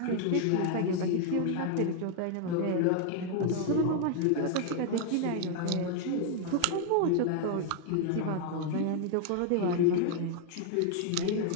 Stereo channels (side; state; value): both; different; correlation 0.00